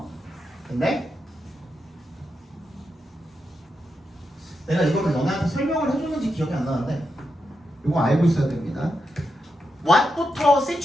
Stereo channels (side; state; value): both; normal; correlation 0.86